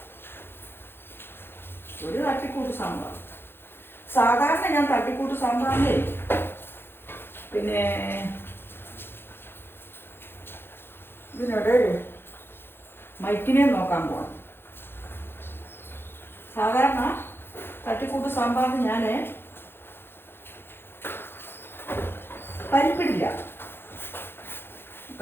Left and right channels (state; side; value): late; right; 0.11 ms